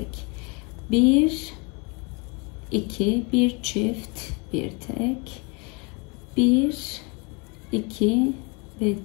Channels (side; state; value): right; quieter; 30.9 dB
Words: bir, iki, bir çift, bir tek, bir, iki ve